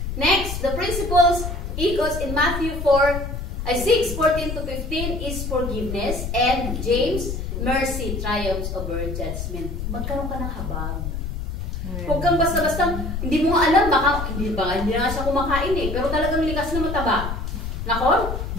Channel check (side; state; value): left; noise; rumble, 5 dB below the sound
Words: Next, the principles echoes in Matthew 6:14 to 15 is forgiveness, and James, mercy triumphs over judgment. Magkaroon ka ng habag. Huwag kang basta-basta, hindi mo alam, hindi na siya kumakain pero talagang likas na mataba. Nakon?